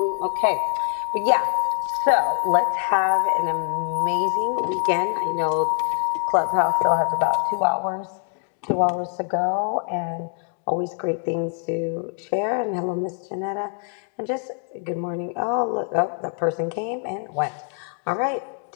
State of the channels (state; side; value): silent; right; 55 dB below the other